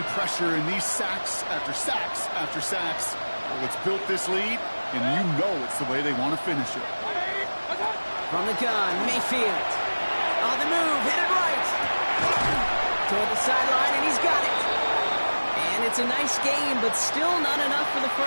pressure and these sacks after sacks after sacks, well, it's built this lead, and you know it's the way they want to finish it. From the gun, Mayfield. On the move, hit it right. Toward the sideline, and he's got it. And it's a nice game, but still not enough for the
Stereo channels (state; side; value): inverted; both; correlation -1.00